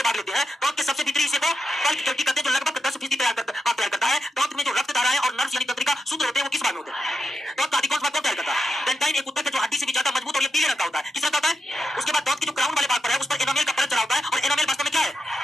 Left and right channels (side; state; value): both; normal; correlation 0.86